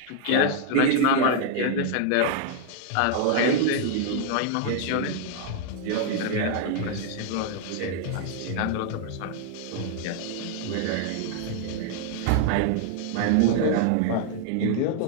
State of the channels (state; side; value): different; both; correlation 0.00